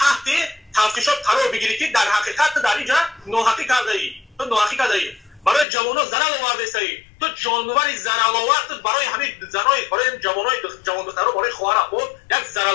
تفتیشات قرار بگیری که در حقیقت در اینجا ناحقی کرده ای تو ناحقی کرده ای برای جوانان ضرر آورده ای تو جانوری ضرر آورد برای همین زنای برای جوانای جوان دخترها برای خواهر خود یک ضرر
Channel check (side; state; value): right; drops out; at 5.7 s